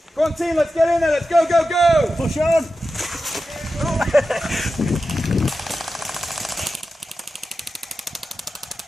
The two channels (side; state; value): both; normal; correlation 0.92